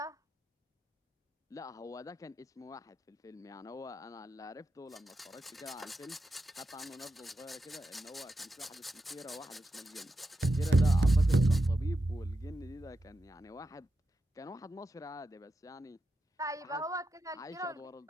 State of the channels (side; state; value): both; normal; correlation 0.88